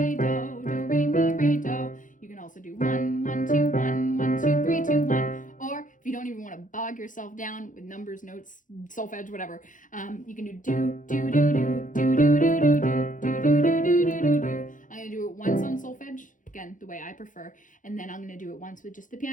mi, re, do. You can also do 1, 1, 2, 1, 1, 2, 3, 2, 1. Or if you don't even want to bog yourself down with numbers, notes, solfege, whatever, you can do do, do, do, do, do, do, do, do, do, do, do, do, do, do. I'm gonna do it once on solfege, again, the way I prefer, and then I'm gonna do it once with just the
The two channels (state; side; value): late; right; 0.38 ms